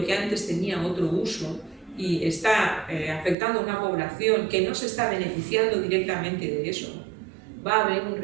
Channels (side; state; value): left; drops out; at 3.4 s